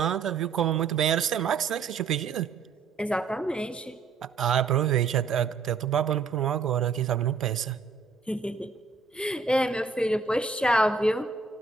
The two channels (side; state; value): left; quieter; 4.8 dB